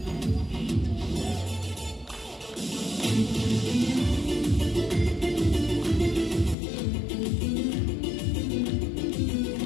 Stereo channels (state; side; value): drops out; right; at 6.6 s